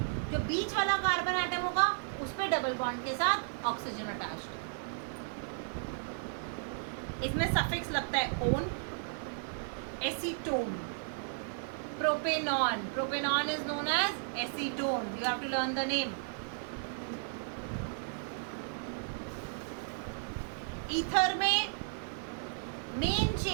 जो बीच वाला कार्बन एटम होगा उस पर डबल बॉन्ड के साथ ऑक्सीजन अटैच्ड है। इसमें सफिक्स लगता है one, acetone, propanone, propanone is known as acetone, you have to learn the name. Ether में मेन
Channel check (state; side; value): silent; left; digital silence